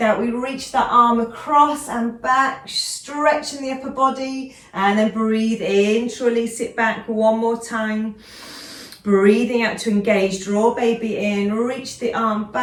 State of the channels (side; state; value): both; identical; correlation 1.00